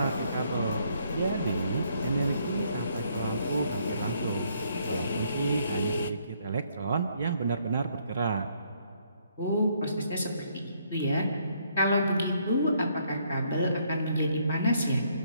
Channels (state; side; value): inverted; both; correlation -0.69